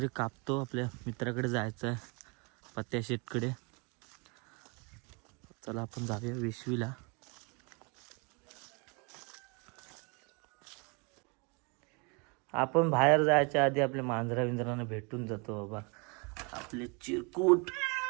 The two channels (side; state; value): left; quieter; 31.3 dB